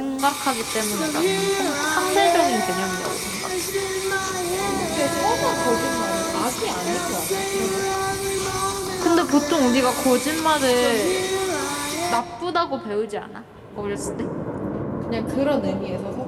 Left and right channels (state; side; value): identical; both; correlation 1.00